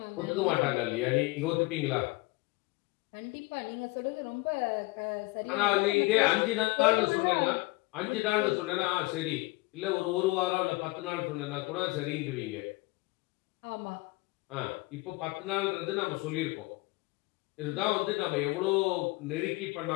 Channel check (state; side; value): quieter; right; 23.2 dB